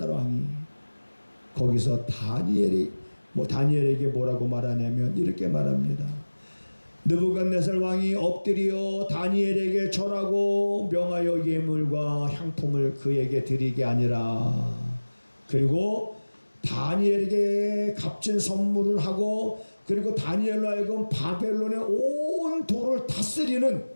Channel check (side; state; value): both; inverted; correlation -1.00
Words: 왕이 거기서 다니엘에게 뭐라고 말하냐면 이렇게 말합니다. 느부갓네살 왕이 엎드려 다니엘에게 절하고 명하여 예물과 향품을 그에게 드리게 아니라 그리고 다니엘에게 값진 선물을 하고 그리고 다니엘로 하여금 바벨론의 온 도를 다스리는